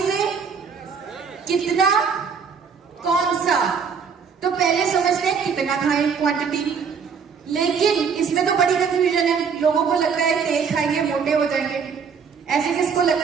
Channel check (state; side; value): quieter; left; 6.2 dB